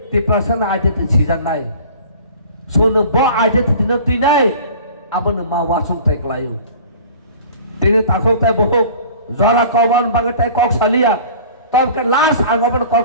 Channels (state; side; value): inverted; both; correlation -0.44